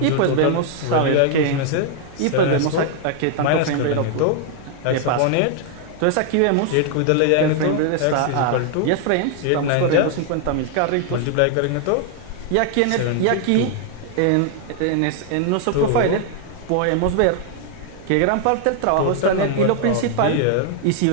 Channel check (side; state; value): both; different; correlation 0.00